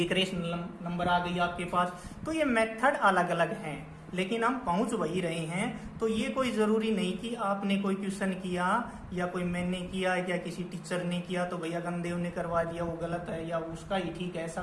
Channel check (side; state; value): both; identical; correlation 1.00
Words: रेशनल नंबर आ गई आपके पास। तो ये मेथड अलग अलग हैं, लेकिन हम पहुंच वही रहे हैं। तो ये कोई जरूरी नहीं कि आपने कोई क्वेश्चन किया या कोई मैंने किया या किसी टीचर ने किया तो भैया गंदेव ने करवा दिया वो गलत है या उसका ही ठीक है, ऐसा